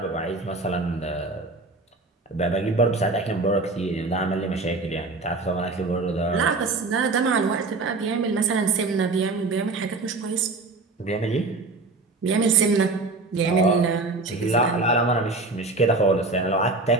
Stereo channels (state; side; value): quieter; left; 3.5 dB